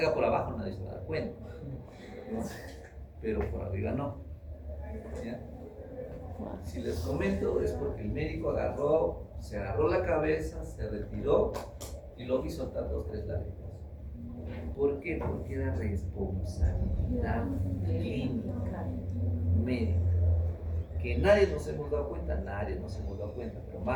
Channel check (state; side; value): identical; both; correlation 1.00